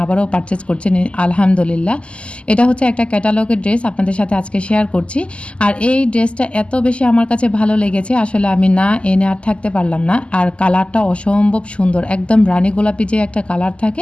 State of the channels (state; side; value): late; right; 0.055 ms